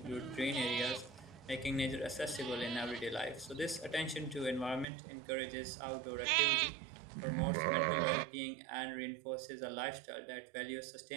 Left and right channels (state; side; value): drops out; left; at 4.9 s